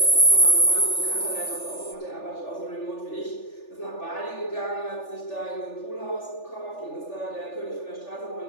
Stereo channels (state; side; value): late; right; 3.4 ms